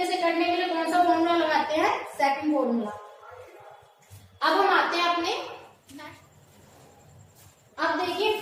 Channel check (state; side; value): identical; both; correlation 1.00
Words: से करने के लिए कौन सा फॉर्मूला लगाते हैं, सेकंड फॉर्मूला। अब हम आते हैं अपने, अब देखिए